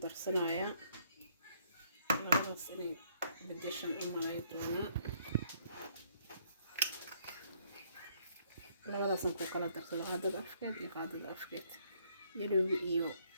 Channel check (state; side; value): inverted; both; correlation -0.67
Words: darsanaya labadaas inay bedeshan u malay doona labadaas ku kala darsada hadda afkeed iyo qaadada afkeed yellow iyo